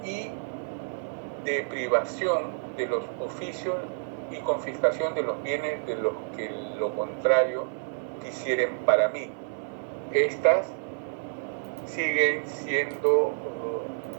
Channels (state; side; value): silent; left; 58 dB below the other